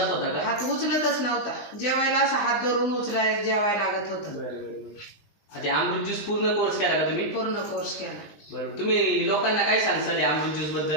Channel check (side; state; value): right; late; 20 ms